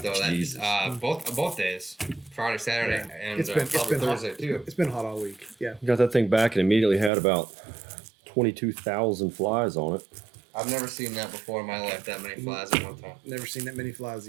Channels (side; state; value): left; drops out; at 7.1 s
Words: That, Jesus. both days, Friday, Saturday, and It's been probably hot. Thursday too. It's been hot all week. Yeah. Got that thing back and immediately had about 22,000 flies on it. I've never seen that before in my life. That many flies at one time. Never seen that many flies